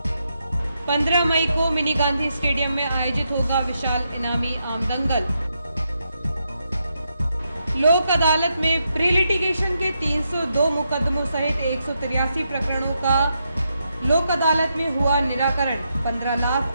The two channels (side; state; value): both; inverted; correlation -0.82